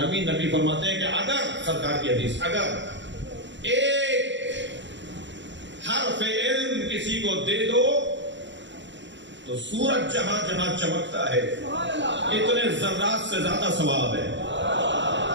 نبی فرماتے ہیں کہ اگر, سرکار کی حدیث, اگر ایک حرف علم کسی کو دے دو تو سورج جہاں جہاں چمکتا ہے اتنے ذرات سے زیادہ ثواب ہے.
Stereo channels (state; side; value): late; left; 0.53 ms